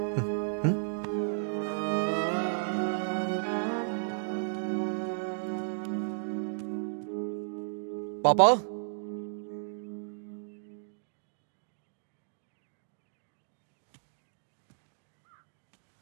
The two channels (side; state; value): left; silent; digital silence